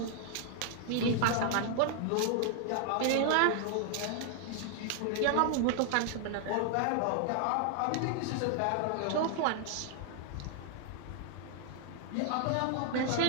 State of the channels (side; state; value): both; different; correlation 0.00